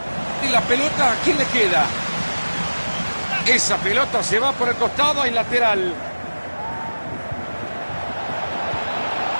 Y la pelota, ¿a quién le queda? Esa pelota se va por el costado y lateral.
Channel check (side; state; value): both; inverted; correlation -1.00